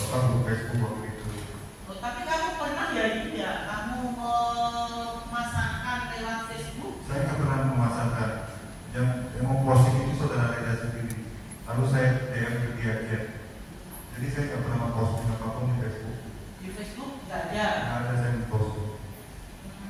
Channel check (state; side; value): identical; both; correlation 1.00